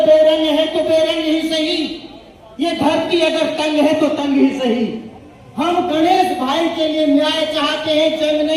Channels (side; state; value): both; identical; correlation 1.00